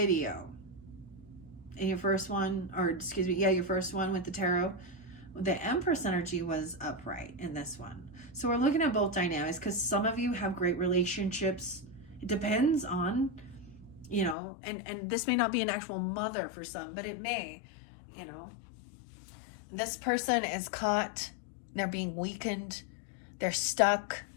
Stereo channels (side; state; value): right; drops out; at 14.4 s